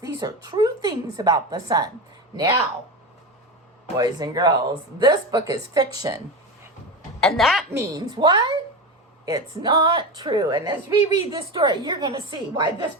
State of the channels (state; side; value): normal; both; correlation 0.21